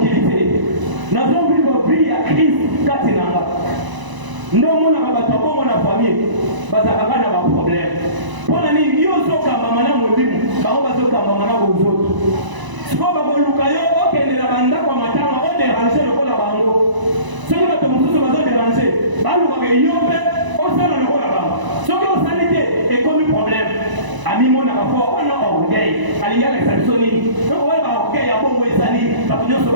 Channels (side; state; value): left; late; 1.0 ms